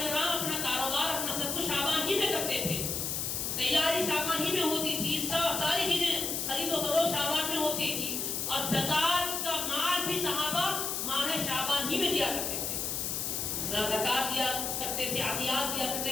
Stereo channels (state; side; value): noise; left; hiss, 1 dB below the sound